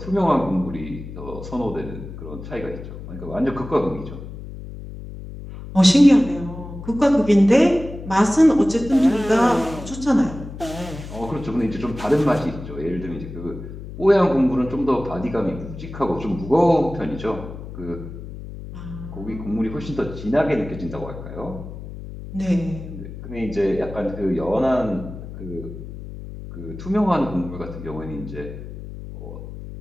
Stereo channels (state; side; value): noise; left; hum, 11 dB below the sound